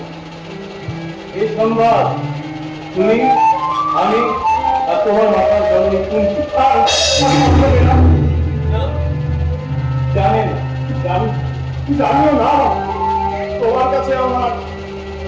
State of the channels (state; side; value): identical; both; correlation 1.00